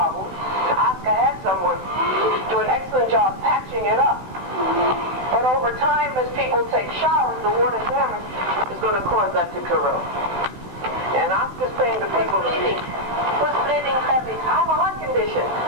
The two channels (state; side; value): late; left; 16 ms